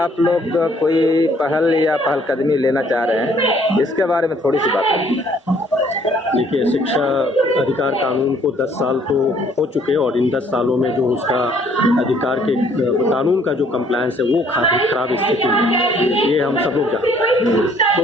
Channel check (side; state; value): both; normal; correlation 0.62